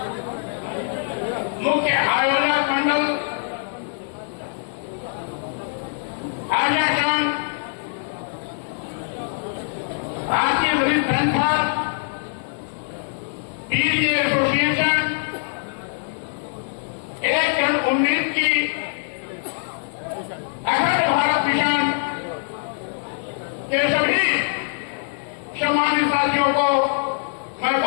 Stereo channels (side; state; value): right; silent; digital silence